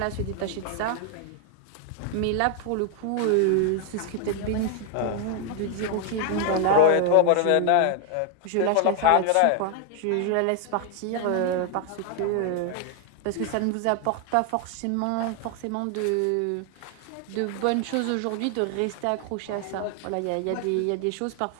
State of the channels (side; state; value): both; different; correlation 0.00